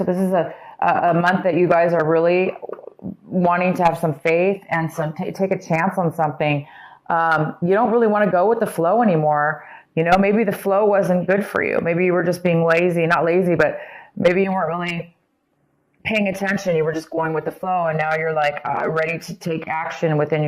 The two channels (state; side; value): identical; both; correlation 1.00